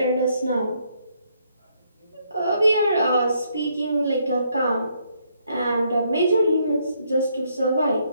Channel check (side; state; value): both; inverted; correlation -0.72